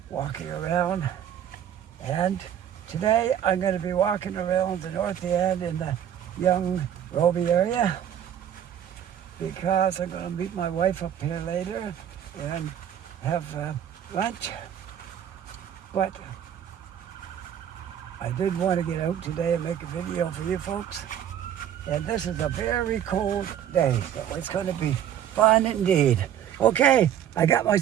walking around. And today I'm going to be walking around the north end in the young Robie area, because I'm going to meet my wife up here later and have lunch. But I did want to get out today and make a video for you folks. And this is a very cold day, so it's going to be fun indeed. Okay, I got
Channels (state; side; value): quieter; left; 10.0 dB